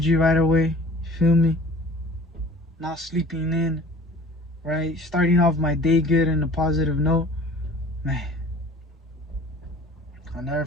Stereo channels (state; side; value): normal; both; correlation 0.46